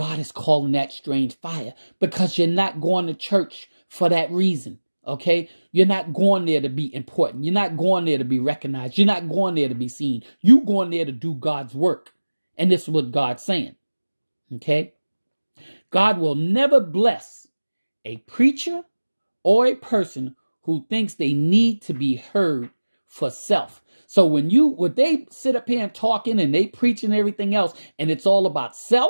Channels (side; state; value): both; inverted; correlation -1.00